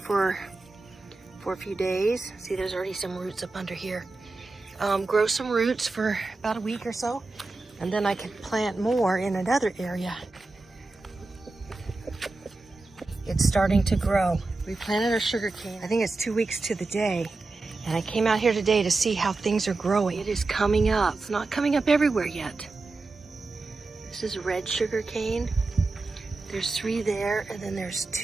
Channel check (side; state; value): left; quieter; 3.4 dB